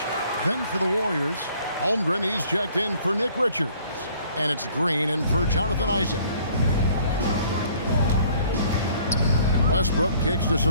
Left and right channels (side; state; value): both; inverted; correlation -0.58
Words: Then for the Warriors, Holmgren, he's checked in for Nick Richards. And it's Green in for Jonathan Isaac. Westbrook kicks to